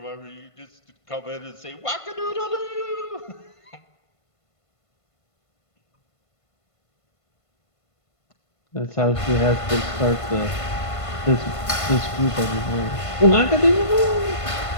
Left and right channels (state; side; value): late; right; 1.5 ms